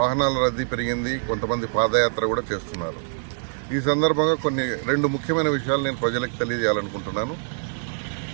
రద్దీ పెరిగింది. కొంతమంది పాదయాత్ర కూడా చేస్తున్నారు. ఈ సందర్భంగా రెండు ముఖ్యమైన విషయాలు నేను ప్రజలకు తెలియజేయాలనుకుంటున్నాను.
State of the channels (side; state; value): left; silent; digital silence